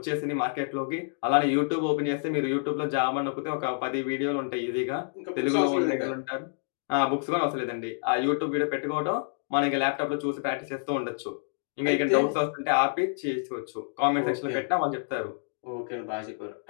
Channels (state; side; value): silent; right; digital silence